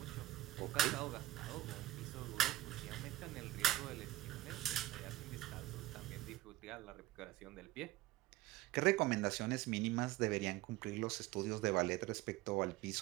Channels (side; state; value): left; quieter; 16.4 dB